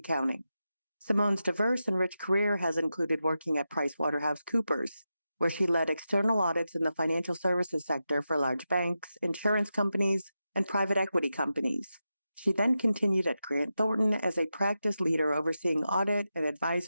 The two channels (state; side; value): inverted; both; correlation -0.90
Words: Simone's diverse and rich career has included working at PricewaterhouseCoopers, where she led external audits in the financial services sector for large banks, insurance companies, and private equity companies. She then continued at Grant Thornton as a practice leader overseeing audit and